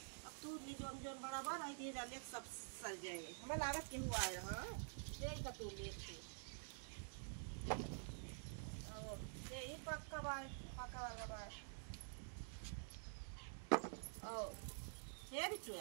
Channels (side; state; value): left; silent; digital silence